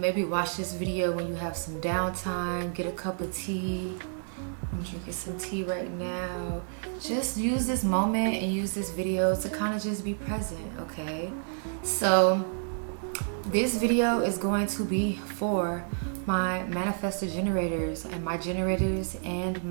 watch this video when you have some downtime. Get a cup of tea. I'm drinking some tea right now. Just use this moment and use this video to kind of just be present, okay? So this video is going to be for my manifestor generators and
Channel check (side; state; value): left; silent; digital silence